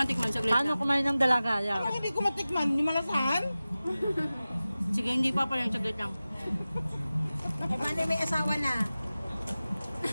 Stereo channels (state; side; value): inverted; both; correlation -0.96